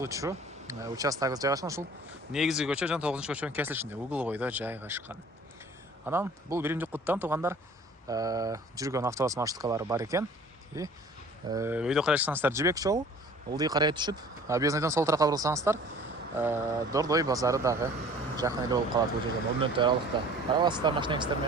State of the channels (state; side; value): normal; both; correlation 0.48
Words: участогубуз жайгашкан. Ушул негизги көчө жана 9-көчөнүн кесилишинде угловойдо жайгашкан. Анан бул Биримдик Куттан туғандар жүргөн автобус маршруткалары бар экен. Өйдө карайсаңыздар Жибек жолу, ылдый карай түшүп, объездныйдан сол тарапка бурулсаңыздар, Дордой базары дагы жакын эле болуп калат бул жерден. 10 мүнөт аралыкта. Карабасыздар машинаңыздар